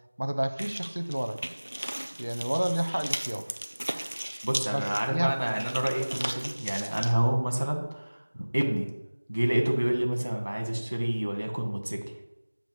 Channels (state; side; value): inverted; both; correlation -1.00